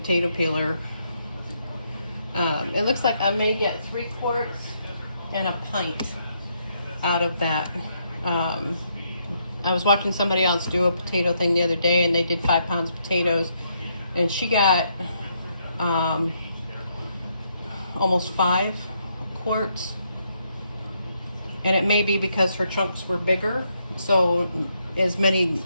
peeler. It looks like I may get 3 quarts and a pint out of that. I was watching somebody else do a potato thing the other day, and they did 5 pounds of potatoes, and she got almost 5 quarts. And it may be because her chunks were bigger, so as many,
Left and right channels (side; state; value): both; inverted; correlation -0.76